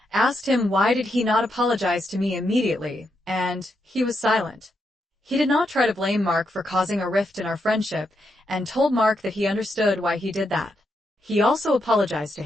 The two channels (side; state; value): both; normal; correlation 0.82